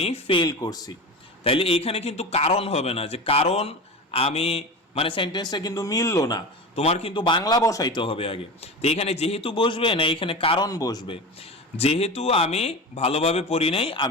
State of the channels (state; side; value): normal; both; correlation 0.27